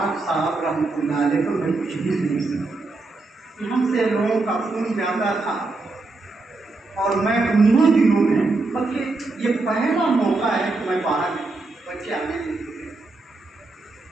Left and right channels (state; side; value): quieter; left; 3.4 dB